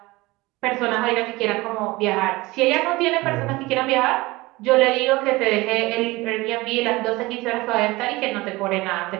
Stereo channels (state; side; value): quieter; left; 21.2 dB